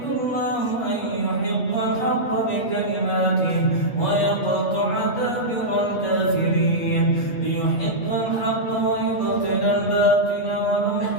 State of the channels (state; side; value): late; right; 8.2 ms